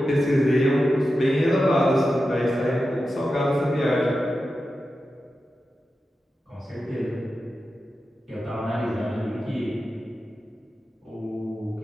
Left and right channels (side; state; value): both; normal; correlation 0.91